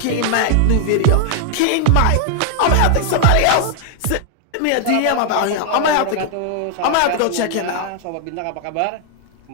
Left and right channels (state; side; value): different; both; correlation 0.00